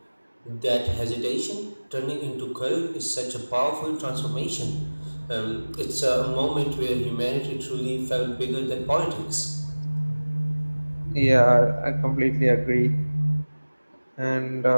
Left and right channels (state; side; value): inverted; both; correlation -1.00